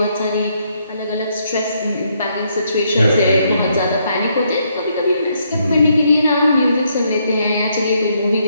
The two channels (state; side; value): inverted; both; correlation -0.74